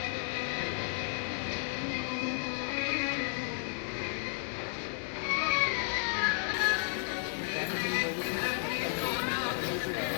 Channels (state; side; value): silent; right; 56 dB below the other